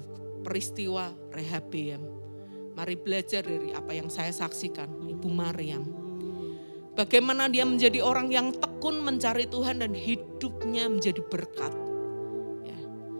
peristiwa Rehabiam. Mari belajar dari apa yang saya saksikan, Ibu Maryam. Bagaimana dia menjadi orang yang tekun mencari Tuhan dan hidupnya menjadi berkat. Ya.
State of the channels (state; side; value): inverted; both; correlation -1.00